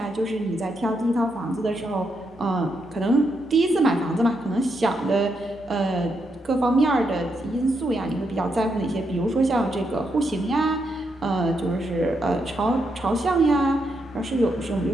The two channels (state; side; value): normal; both; correlation 0.81